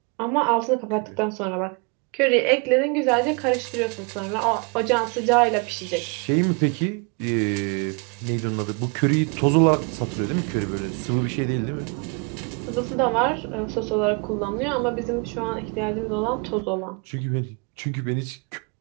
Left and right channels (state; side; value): quieter; left; 33.8 dB